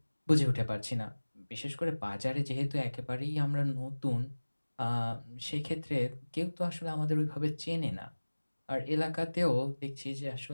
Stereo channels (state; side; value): inverted; both; correlation -1.00